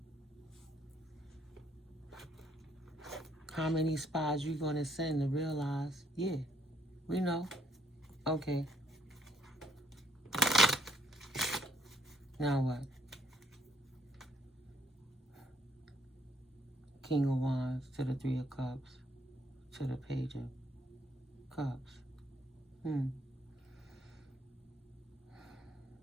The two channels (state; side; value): normal; both; correlation 0.68